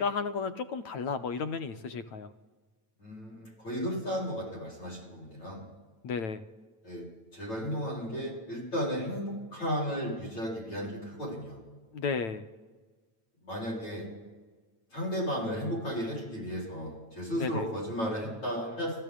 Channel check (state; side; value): late; right; 9.0 ms